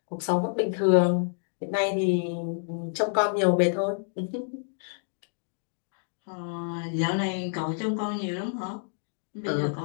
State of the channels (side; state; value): right; silent; digital silence